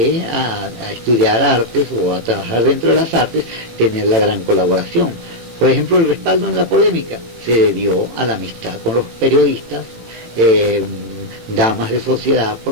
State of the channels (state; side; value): late; left; 18 ms